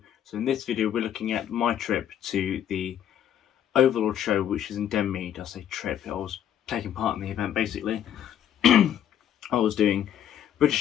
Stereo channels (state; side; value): quieter; right; 10.1 dB